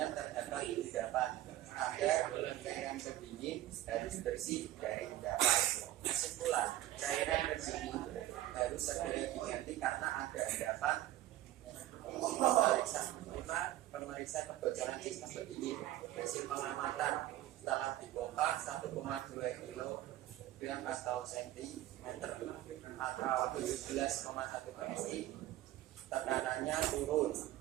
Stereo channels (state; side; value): quieter; left; 14.6 dB